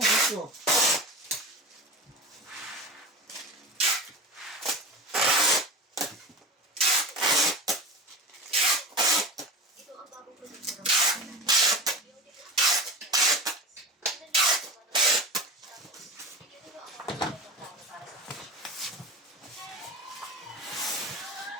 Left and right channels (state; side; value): normal; both; correlation 0.30